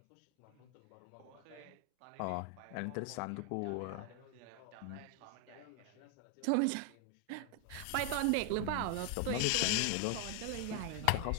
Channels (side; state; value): both; different; correlation 0.01